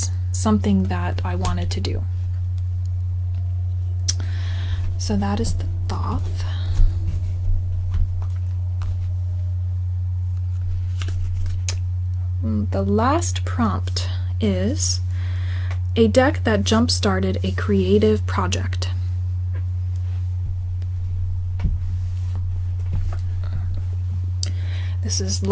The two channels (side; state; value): both; identical; correlation 1.00